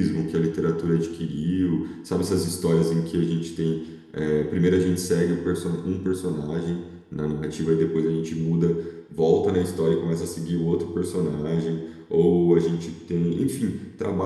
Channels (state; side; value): identical; both; correlation 1.00